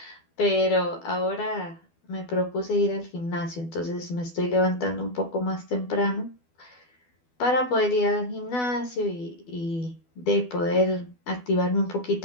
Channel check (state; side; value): late; right; 12 ms